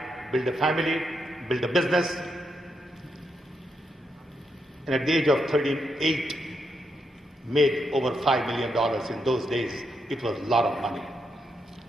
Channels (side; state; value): both; normal; correlation 0.81